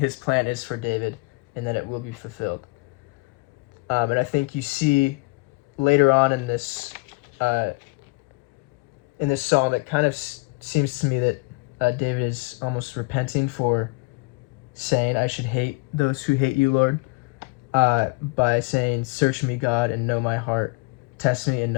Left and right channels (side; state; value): right; quieter; 26.2 dB